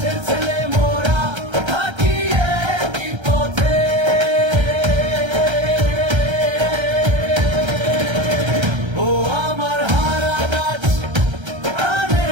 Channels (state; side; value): late; left; 1.3 ms